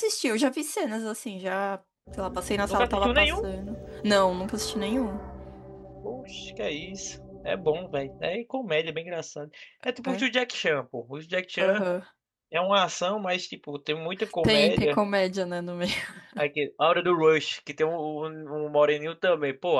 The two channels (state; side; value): identical; both; correlation 1.00